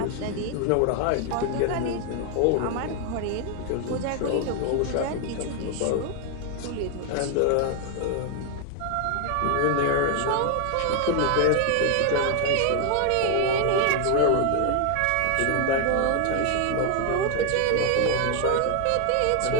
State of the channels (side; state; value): both; different; correlation 0.01